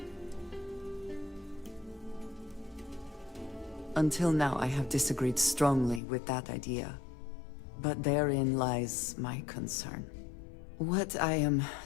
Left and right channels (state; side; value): drops out; right; at 6.0 s